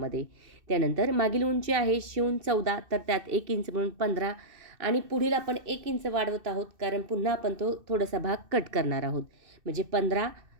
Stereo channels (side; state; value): left; late; 2.6 ms